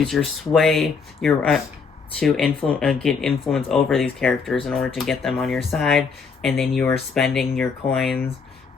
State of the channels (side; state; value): right; quieter; 5.4 dB